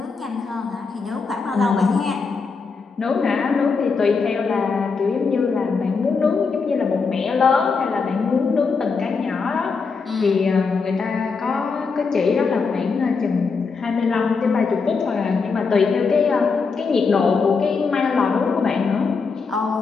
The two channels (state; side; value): quieter; right; 4.9 dB